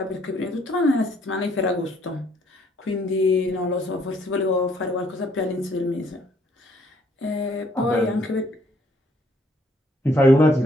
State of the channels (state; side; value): normal; both; correlation 0.66